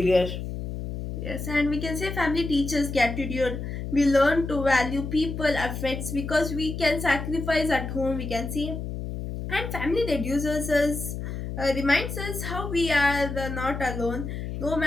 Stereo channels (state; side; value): noise; left; hum, 6 dB below the sound